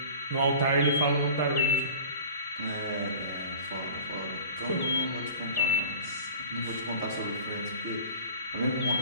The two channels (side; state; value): both; inverted; correlation -0.41